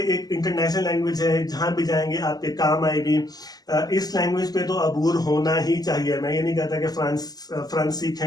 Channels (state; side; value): late; right; 0.19 ms